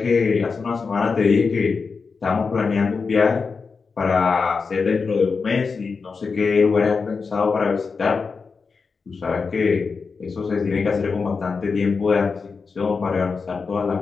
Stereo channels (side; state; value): right; quieter; 4.9 dB